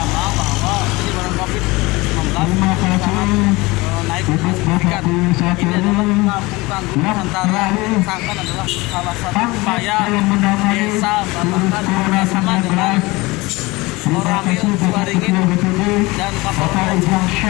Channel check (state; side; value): quieter; right; 22.6 dB